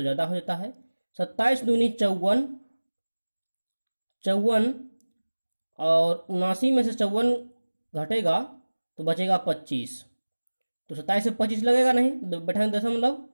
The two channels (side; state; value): both; inverted; correlation -1.00